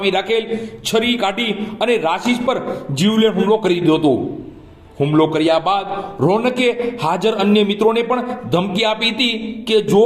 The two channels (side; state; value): both; identical; correlation 1.00